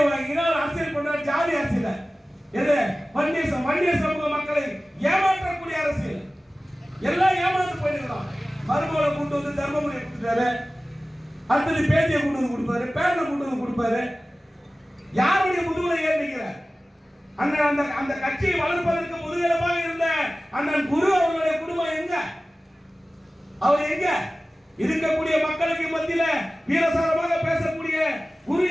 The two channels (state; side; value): normal; both; correlation 0.96